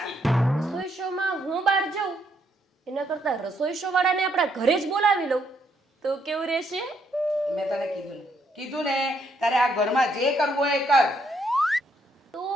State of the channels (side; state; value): both; normal; correlation 0.73